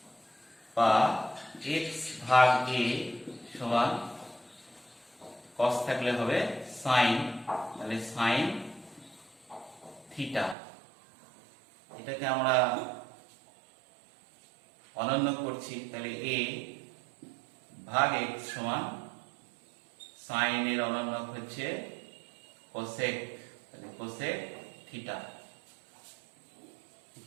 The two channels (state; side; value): drops out; left; at 10.6 s